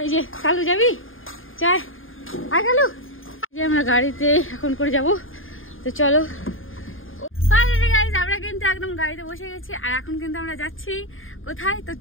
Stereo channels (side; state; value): right; late; 0.59 ms